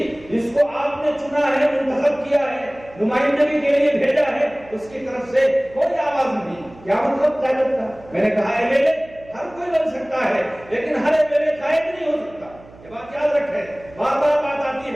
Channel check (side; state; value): right; noise; hum, 22 dB below the sound